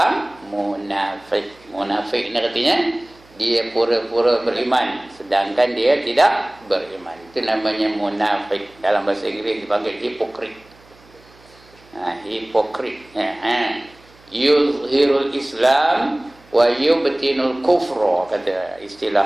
munafik. Munafik ni artinya dia pura-pura beriman sedangkan dia tidak beriman. Itu namanya munafik. Dalam bahasa Inggeris dipanggil hipokrit. Hipokrit. Yuzhirul Islam wa yubtinul kufra, kata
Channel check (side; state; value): right; noise; hum, 27 dB below the sound